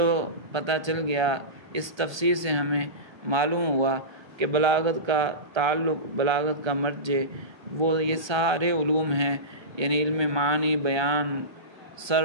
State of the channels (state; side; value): late; left; 1.3 ms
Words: پتہ چل گیا، اس تفسیر سے ہمیں معلوم ہوا کہ بلاغت کا تعلق، بلاغت کا مرجع وہ یہ سارے علوم ہیں، یعنی علم معنی، بیان،